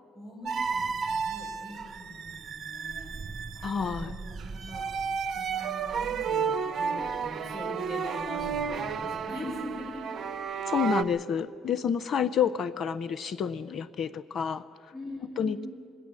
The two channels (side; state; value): both; normal; correlation 0.61